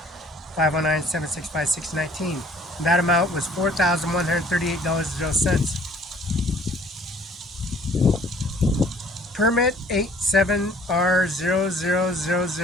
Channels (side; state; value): both; normal; correlation 0.55